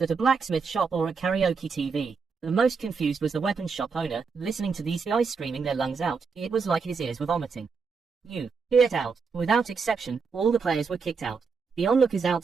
a blacksmith shop or a karaoke TV? The most confused was the weapon shop owner, listening to these guys screaming their lungs out. It was like his ears were vomiting. You, get out. Without exception, all the players were kicked out. The onlookers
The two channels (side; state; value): left; quieter; 5.2 dB